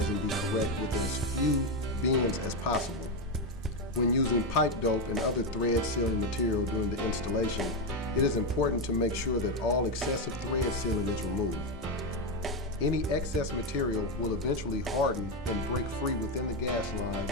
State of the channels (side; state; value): both; normal; correlation 0.09